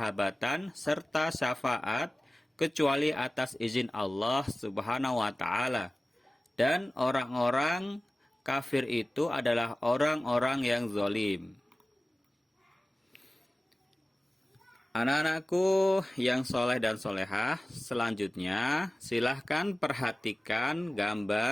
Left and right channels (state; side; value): normal; both; correlation 0.97